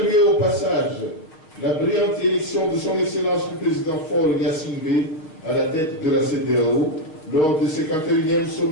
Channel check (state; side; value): late; right; 6.3 ms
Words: au passage la brillante élection de son Excellence le Président Faure Gnassingbé à la tête de la CEDEAO lors du 51e